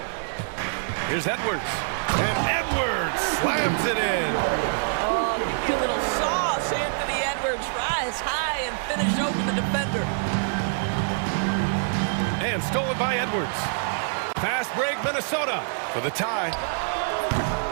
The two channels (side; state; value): left; silent; digital silence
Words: Here's Edwards. And Edwards slams it in. Oh, give a little sauce. Anthony Edwards rise high and finish over the defender. And stolen by Edwards. Fast break, Minnesota for the tie.